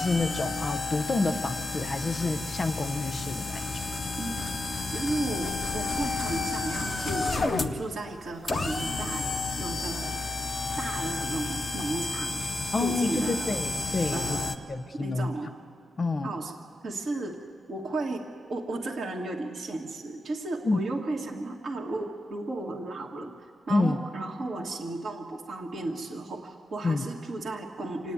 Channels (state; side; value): normal; both; correlation 0.87